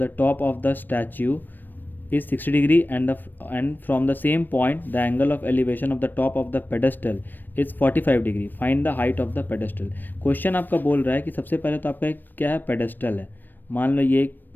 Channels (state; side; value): late; right; 0.092 ms